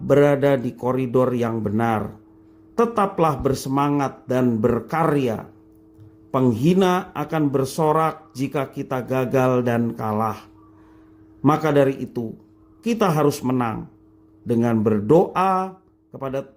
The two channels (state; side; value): identical; both; correlation 1.00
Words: berada di koridor yang benar. Tetaplah bersemangat dan berkarya. Penghina akan bersorak jika kita gagal dan kalah. Maka dari itu, kita harus menang dengan berdoa kepada